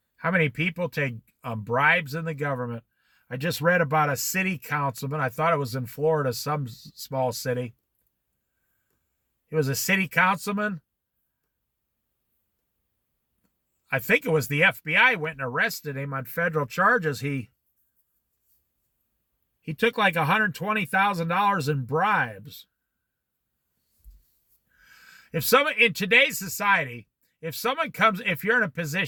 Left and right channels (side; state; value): both; identical; correlation 1.00